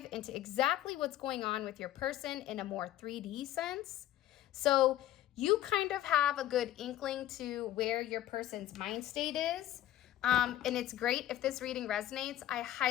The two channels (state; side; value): quieter; right; 13.3 dB